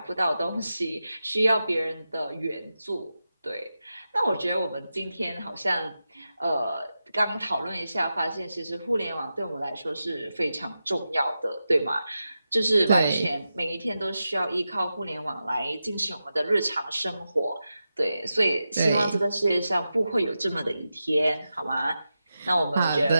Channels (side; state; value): both; inverted; correlation -0.91